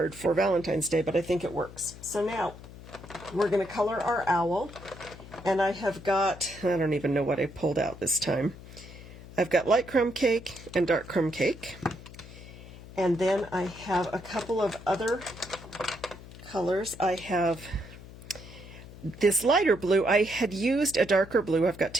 for Valentine's Day, but I think it works. So now we're going to color our owl, and I have got, I don't even know what I pulled out this time. I've got light crumb cake and dark crumb cake, and then I have a couple of other colors. I have this lighter blue. I had used a darker blue. I've got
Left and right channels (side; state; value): left; noise; hum, 16 dB below the sound